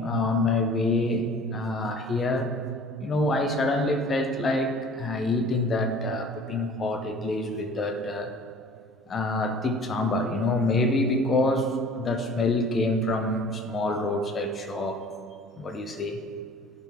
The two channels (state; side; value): normal; both; correlation 0.46